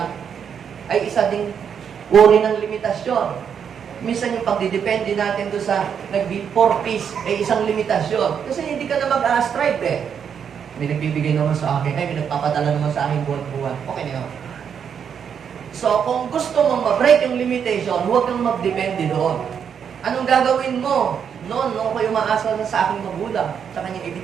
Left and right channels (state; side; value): quieter; left; 7.6 dB